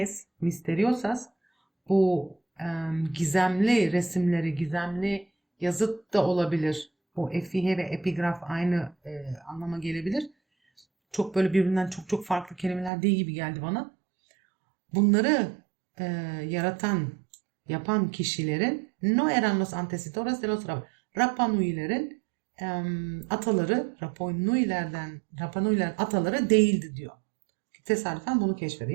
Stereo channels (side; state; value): left; drops out; at 12.9 s